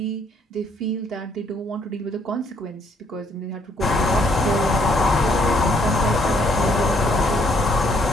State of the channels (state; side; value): normal; both; correlation 0.67